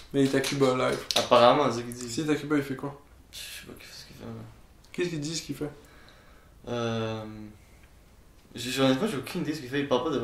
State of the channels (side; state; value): both; identical; correlation 1.00